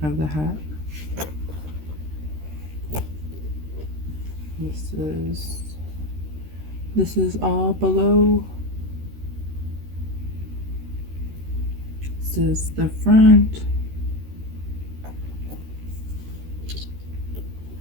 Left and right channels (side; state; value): left; late; 13 ms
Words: of the hat. This is all below. This is the front.